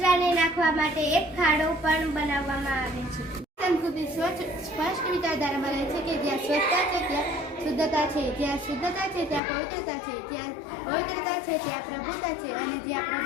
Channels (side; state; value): right; drops out; at 9.4 s